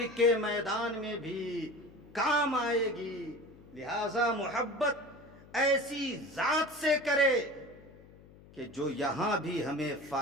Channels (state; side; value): noise; left; hum, 22 dB below the sound